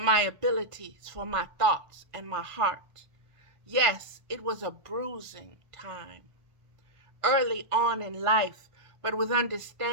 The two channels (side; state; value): left; late; 1.4 ms